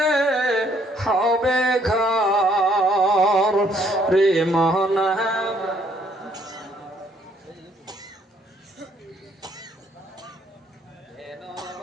হবে ঘর রে মোহনা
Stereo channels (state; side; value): normal; both; correlation 0.66